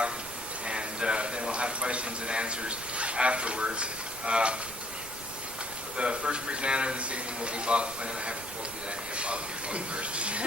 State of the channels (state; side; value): noise; right; rumble, 18 dB below the sound